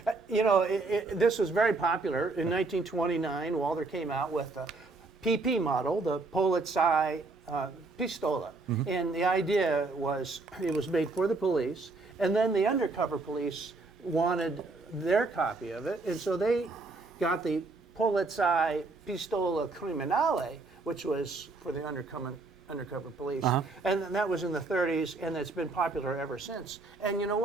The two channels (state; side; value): quieter; left; 3.6 dB